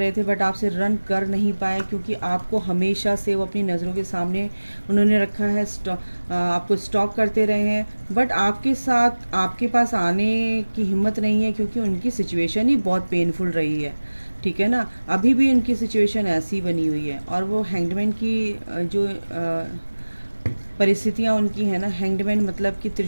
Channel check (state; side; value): inverted; both; correlation -1.00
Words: थे बट आपसे रन कर नहीं पाए, क्योंकि आपको हमेशा से वो अपनी नज़रों के सामने उन्होंने रखा है। आपको स्टॉक करते रहे हैं, बट आपके साथ आपके पास आने की हिम्मत नहीं है, क्योंकि उनकी सिचुएशन ही बहुत पेनफुल रही है। ठीक है ना, अभी भी उनकी सिचुएशन ऐसी बनी हुई है और वो हैंगमैन की जो परिस्थितियाँ उनकी है ना, हैंगमैन मतलब कि